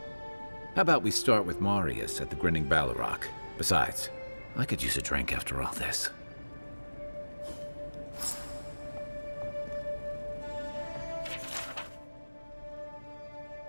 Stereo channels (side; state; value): both; inverted; correlation -1.00